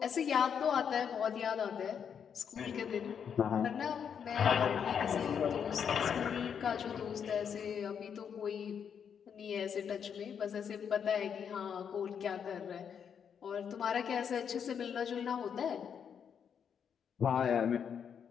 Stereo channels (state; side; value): quieter; right; 7.5 dB